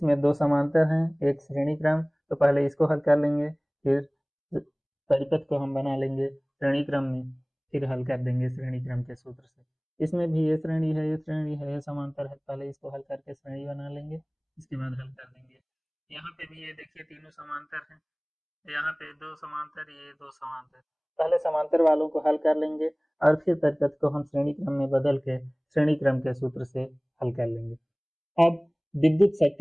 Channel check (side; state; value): both; identical; correlation 1.00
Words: 2 समांतर हैं, एक श्रेणी क्रम, तो पहले इसको हल कर लेंगे, फिर परिपथ को हम बना लेंगे श्रेणी क्रम में, फिर हल कर देंगे श्रेणी क्रम के सूत्र से। इसमें भी ये श्रेणी है, ये श्रेणी है, ये समांतर है, पहले इसको हल करके श्रेणी बना लेंगे, इसके बाद हल कर देंगे। यहाँ पे भी ये देखिए तीनों समांतर हैं, यहाँ पे दो समांतर, ये दो समांतर, पहले समांतर वालों को हल कर लेंगे और फिर परिपथ को हम श्रेणी क्रम में बदल के श्रेणी क्रम के सूत्र से हल कर लेंगे। अब विद्युत